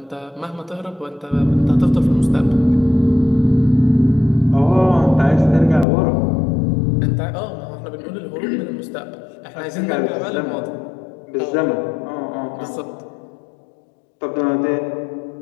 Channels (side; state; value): right; drops out; at 5.9 s